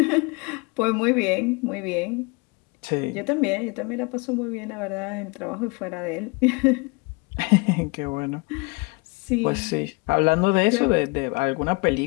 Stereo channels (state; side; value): quieter; right; 28.5 dB